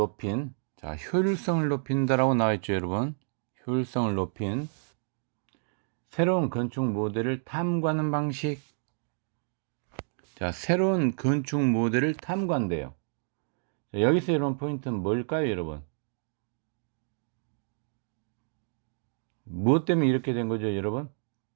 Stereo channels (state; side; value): silent; left; digital silence